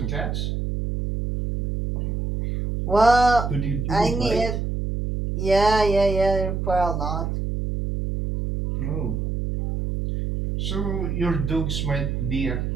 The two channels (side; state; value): right; noise; hum, 2 dB below the sound